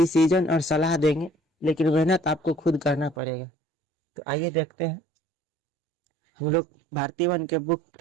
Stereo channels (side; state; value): left; drops out; at 3.2 s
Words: और सलाह देंगे, लेकिन मेहनत आपको खुद करना पड़ेगा। तो आइए देखते हैं। हम लोग भारतीय वन के बुक